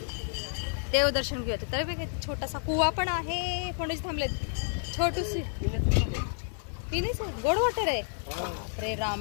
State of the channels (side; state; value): right; silent; 57 dB below the other